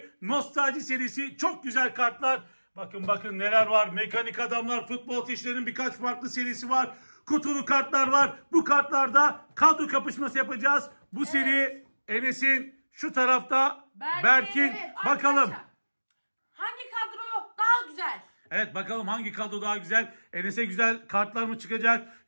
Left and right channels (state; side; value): inverted; both; correlation -1.00